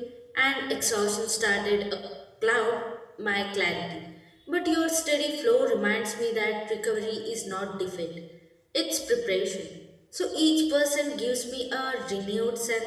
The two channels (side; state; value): both; identical; correlation 1.00